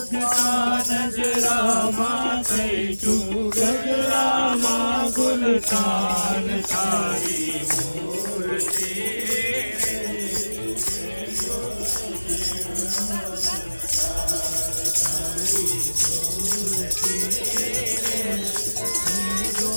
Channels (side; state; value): both; inverted; correlation -1.00